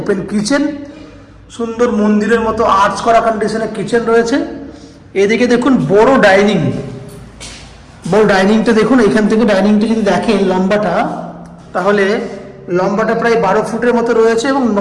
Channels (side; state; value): both; identical; correlation 1.00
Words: কিচেন, সুন্দর মন্দিরের মতো আর্চ করা কন্ডিশনে কিচেন রয়েছে। এদিকে দেখুন বড় ডাইনিং, বড় ডাইনিংটা দেখুন। এখান থেকে ডাইনিংটা যদি দেখেন লম্বাটা, তাহলে লম্বাটা প্রায় 12 ফুটের মতো রয়েছে এবং